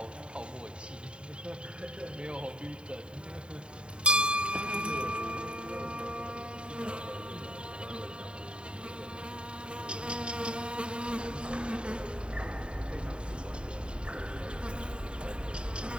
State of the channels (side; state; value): left; late; 0.052 ms